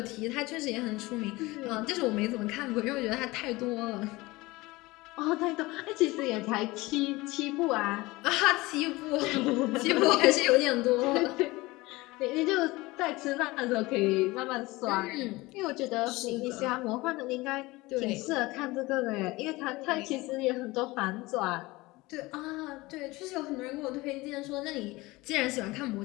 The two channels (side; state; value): right; quieter; 21.2 dB